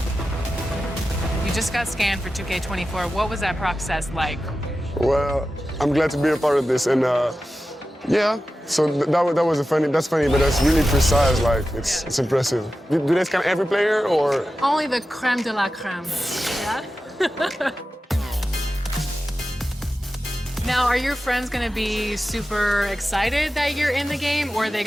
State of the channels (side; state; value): both; normal; correlation 0.93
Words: You just got scanned for 2K24. What was that process like? Well, I'm glad to be a part of this, and yeah. So that's funny, but that's really precise. Like it's impressive. Do they scan every player or? Only the creme de la creme. Yeah. Now, are your friends gonna be super excited that you're in the game, or are they